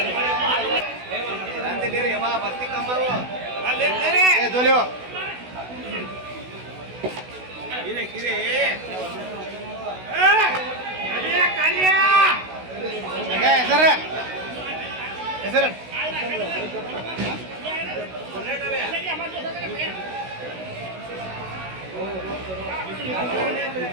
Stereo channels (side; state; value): left; late; 16 ms